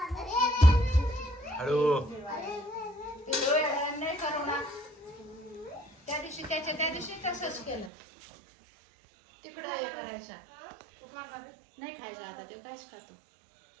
हळू. नाही करू ना. त्या दिवशी तसंच केलं. तिकडं हे करायचा. नाही खायचं आता ते कायच खातो.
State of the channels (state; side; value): drops out; left; at 7.9 s